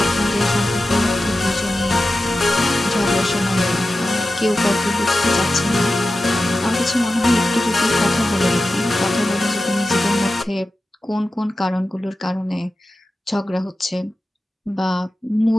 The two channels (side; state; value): both; normal; correlation 0.93